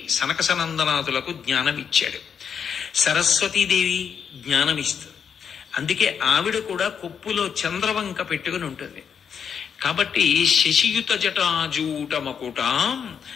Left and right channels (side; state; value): right; quieter; 7.2 dB